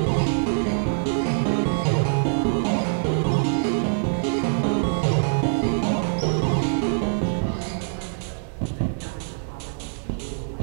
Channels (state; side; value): silent; left; digital silence